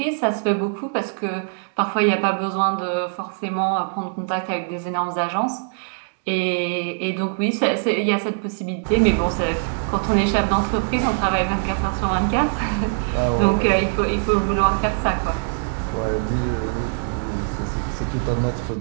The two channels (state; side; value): silent; left; digital silence